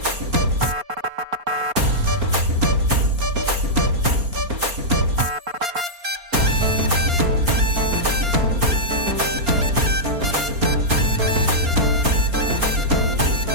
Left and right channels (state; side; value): late; left; 4.3 ms